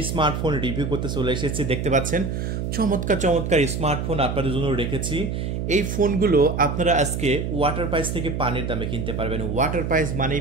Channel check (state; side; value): noise; right; hum, 3 dB below the sound